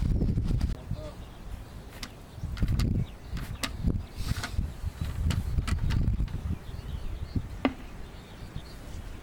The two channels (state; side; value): identical; both; correlation 1.00